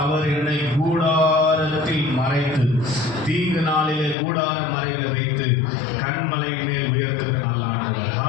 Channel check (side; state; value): right; drops out; at 4.2 s